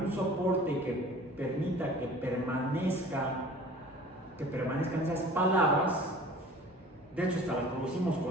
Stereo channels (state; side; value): normal; both; correlation 0.45